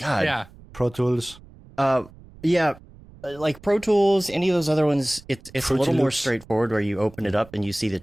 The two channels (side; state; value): right; noise; rumble, 22 dB below the sound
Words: Yeah. Pro Tools. Yeah. Like Pro Tools, any of those other ones, it's a little more Loops. straightforward where you open it up and you see the